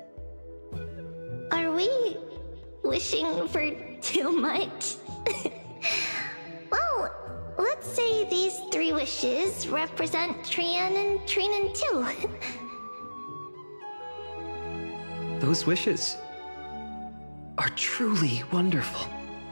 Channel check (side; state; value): both; inverted; correlation -1.00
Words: Are we wishing for too much? Well, let's say these 3 wishes represent Trian and Trinan too. Those wishes are truly wonderful.